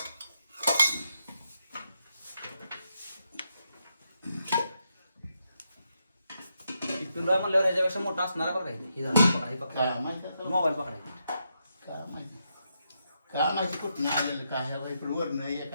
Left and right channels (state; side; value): inverted; both; correlation -0.82